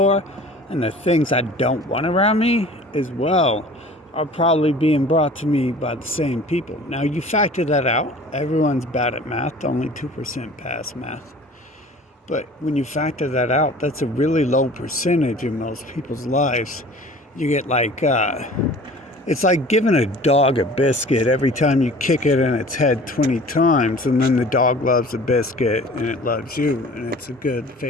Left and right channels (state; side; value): normal; both; correlation 0.45